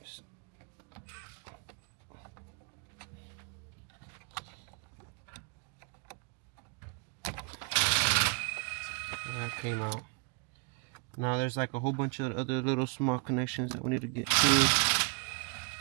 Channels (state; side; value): quieter; left; 36.8 dB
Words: That came out. Now there's like a whole bunch of other little small connections that we need to get to.